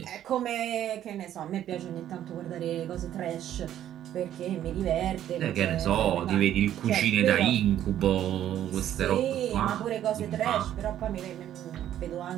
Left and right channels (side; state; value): left; quieter; 11.4 dB